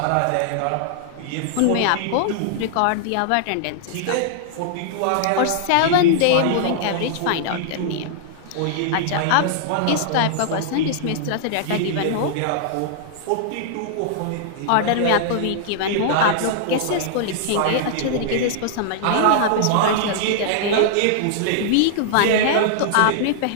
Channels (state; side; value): different; both; correlation -0.01